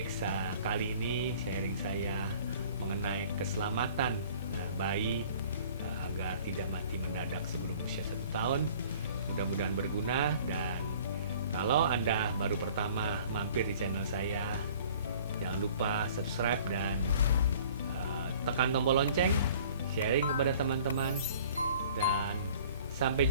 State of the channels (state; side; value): inverted; both; correlation -0.51